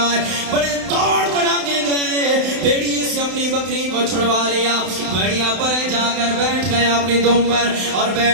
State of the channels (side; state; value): left; late; 32 ms